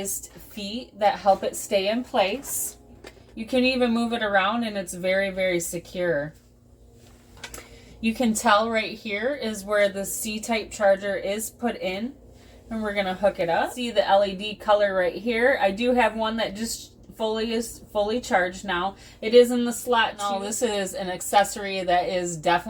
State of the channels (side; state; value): both; identical; correlation 1.00